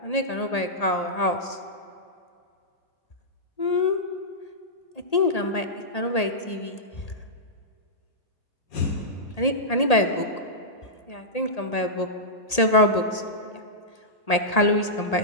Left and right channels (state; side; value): late; right; 1.8 ms